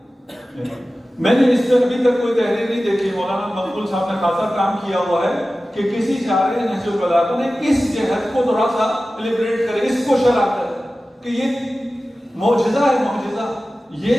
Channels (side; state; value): both; normal; correlation 0.95